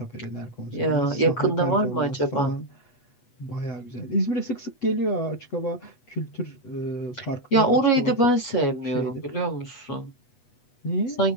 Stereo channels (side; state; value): right; late; 8.2 ms